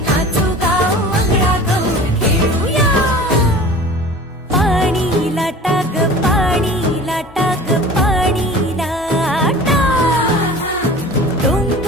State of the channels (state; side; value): normal; both; correlation 0.41